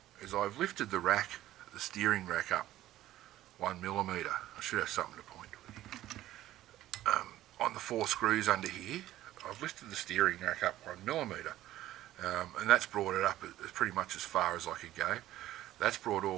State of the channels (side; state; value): left; quieter; 14.3 dB